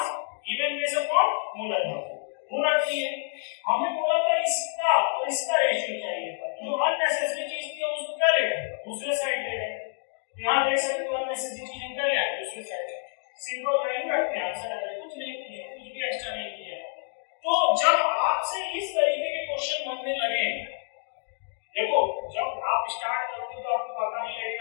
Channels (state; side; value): silent; right; 59 dB below the other